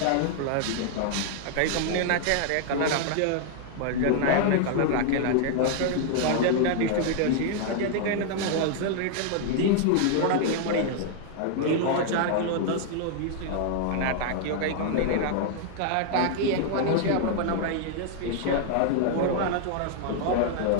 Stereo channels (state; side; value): different; both; correlation 0.00